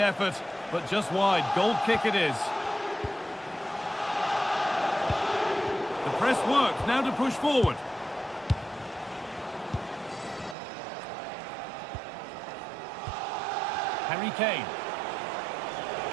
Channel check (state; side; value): drops out; left; at 10.6 s